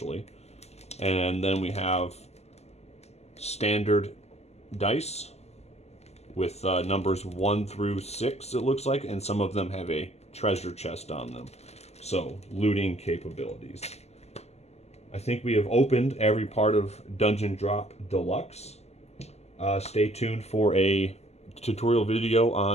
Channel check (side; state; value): right; late; 0.31 ms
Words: And then we have standard dice with numbers 1 through 6, it looks like, and some of them have a treasure chest on them. So, looting capabilities. I think we have opened every part of Dungeon Drop Deluxe. Stay tuned for a tutorial video